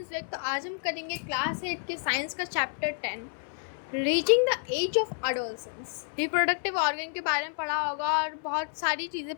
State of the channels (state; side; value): silent; right; 58 dB below the other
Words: Vik. तो आज हम करेंगे क्लास 8 के साइंस का chapter 10, reaching the age of adolescence. Reproductive organ के बारे में पढ़ा होगा और बहुत सारी चीज़ें